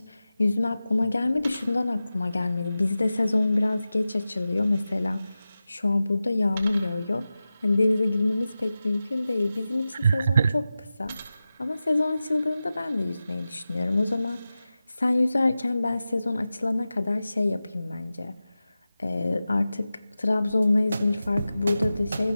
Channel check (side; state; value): both; inverted; correlation -0.94